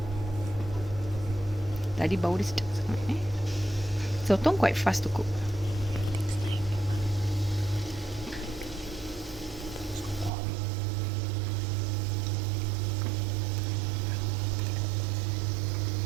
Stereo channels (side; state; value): left; drops out; at 10.3 s